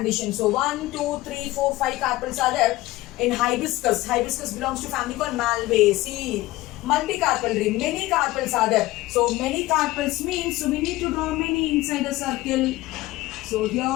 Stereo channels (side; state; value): right; quieter; 18.2 dB